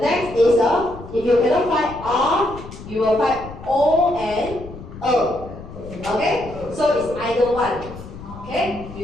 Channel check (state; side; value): noise; left; rumble, 14 dB below the sound